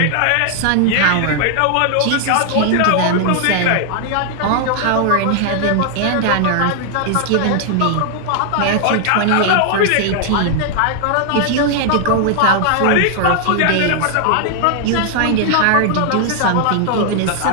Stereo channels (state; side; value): different; both; correlation 0.00